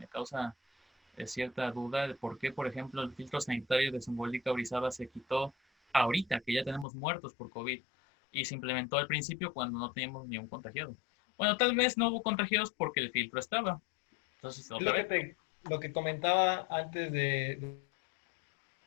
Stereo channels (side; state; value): right; drops out; at 6.9 s